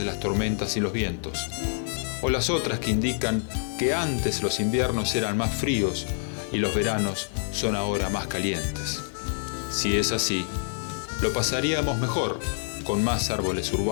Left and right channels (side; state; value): right; silent; digital silence